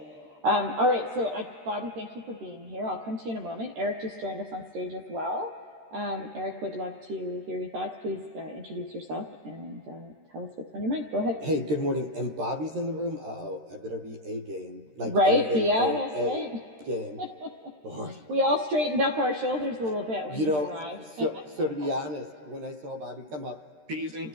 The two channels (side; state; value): left; late; 13 ms